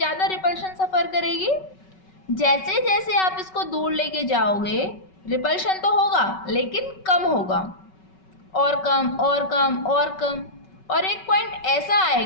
रिपल्शन सफ़र करेगी। जैसे जैसे आप इसको दूर लेके जाओगे रिपल्शन तो होगा लेकिन कम होगा, और कम और कम और कम, और एक पॉइंट ऐसा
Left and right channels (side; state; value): right; late; 5.3 ms